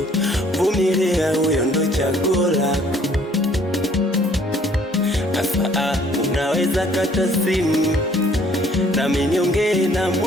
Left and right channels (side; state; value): both; normal; correlation 0.59